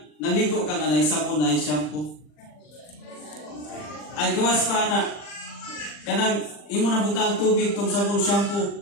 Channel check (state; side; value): late; right; 40 ms